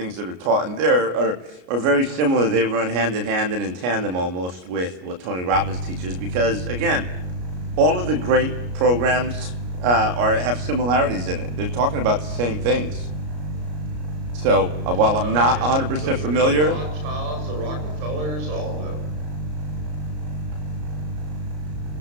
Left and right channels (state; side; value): late; left; 33 ms